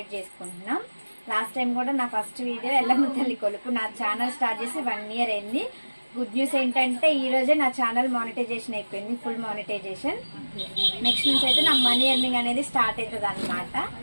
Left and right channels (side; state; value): both; inverted; correlation -1.00